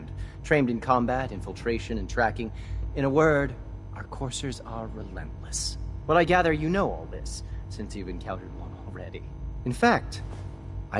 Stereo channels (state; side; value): identical; both; correlation 1.00